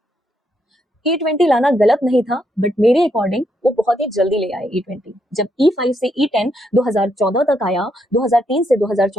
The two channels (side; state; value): both; normal; correlation 0.77